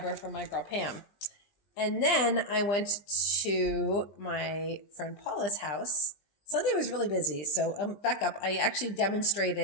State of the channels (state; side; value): late; right; 20 ms